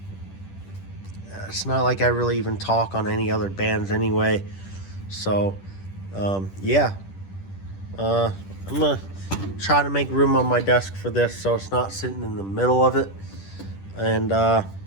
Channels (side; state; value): right; late; 10 ms